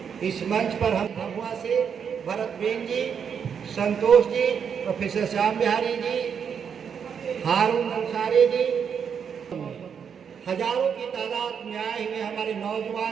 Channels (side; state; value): left; quieter; 7.2 dB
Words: इस मंच पर हम भभुआ से भरत बेन जी, संतोष जी, प्रोफेसर श्याम बिहारी जी, हारून अंसारी जी, हजारों की तादाद में आए हुए हमारे